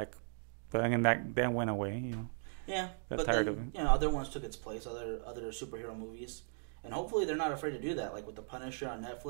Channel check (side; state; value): left; silent; digital silence